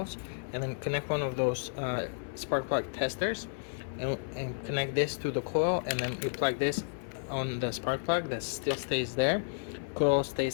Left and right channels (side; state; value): right; silent; 56 dB below the other